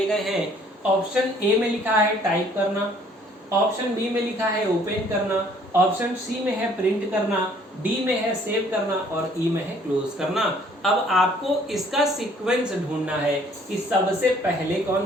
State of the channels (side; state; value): both; normal; correlation 0.59